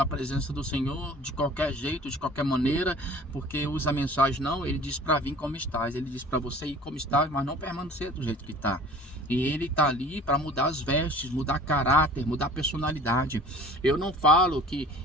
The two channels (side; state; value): both; normal; correlation 0.46